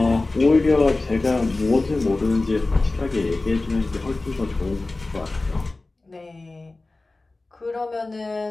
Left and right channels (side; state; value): right; quieter; 3.2 dB